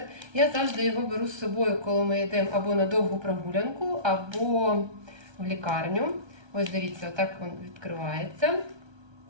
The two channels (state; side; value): late; left; 1.3 ms